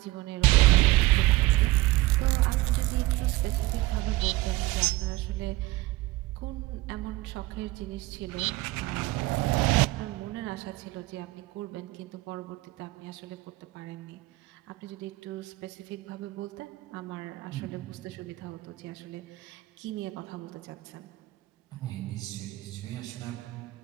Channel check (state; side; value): quieter; left; 19.3 dB